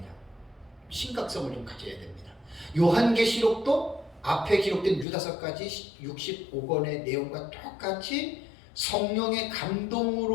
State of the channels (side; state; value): right; drops out; at 5.1 s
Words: 심각성을 좀 가져야 됩니다. 요한계시록도 앞에 기록된 유다서까지 65권의 내용과 똑같이 성령의